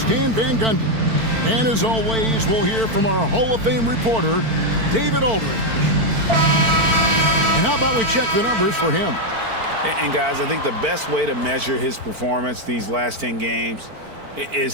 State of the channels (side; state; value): left; late; 4.5 ms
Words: Van Gundy. And as always, we'll hear from our Hall of Fame reporter, David Aldridge. And how about we check the numbers for him? And guys, I think the best way to measure his performance these last 10 games